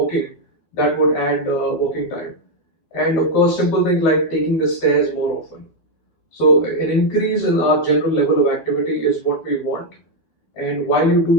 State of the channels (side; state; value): right; late; 13 ms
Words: that would add walking time. And of course, simple things like taking the stairs more often. So an increase in our general level of activity is what we want. And while you